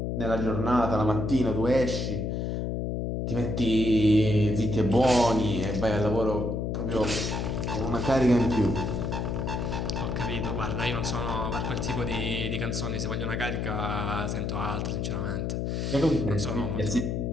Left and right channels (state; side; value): noise; left; hum, 1 dB below the sound